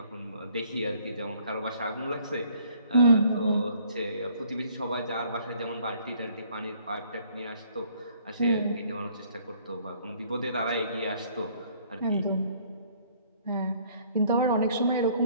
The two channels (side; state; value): both; inverted; correlation -0.61